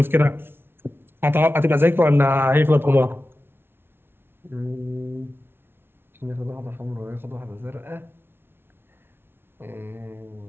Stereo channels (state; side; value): late; left; 0.11 ms